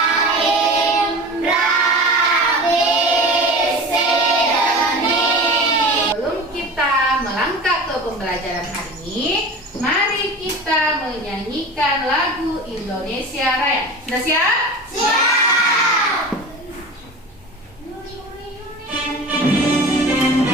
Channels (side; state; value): both; normal; correlation 0.34